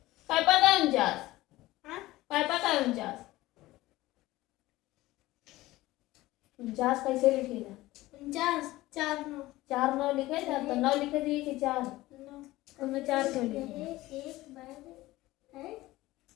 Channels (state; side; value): quieter; right; 17.9 dB